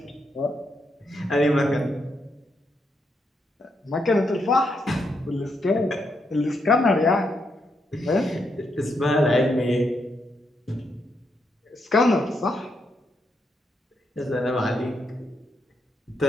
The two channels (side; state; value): both; normal; correlation 0.80